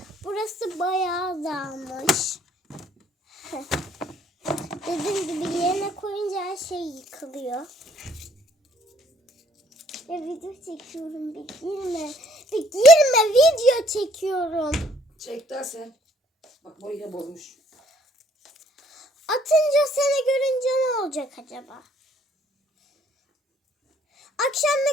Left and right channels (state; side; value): normal; both; correlation 0.63